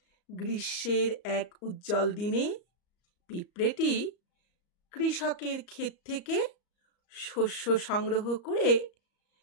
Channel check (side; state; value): right; late; 34 ms